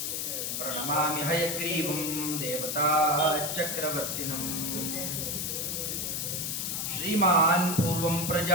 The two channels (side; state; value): left; noise; hiss, 2 dB below the sound